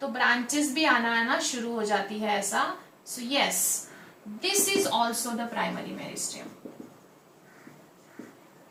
तो ब्रांचेस भी आना शुरू हो जाती है ऐसा। So yes, this is also the primary meristem,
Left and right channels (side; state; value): both; identical; correlation 1.00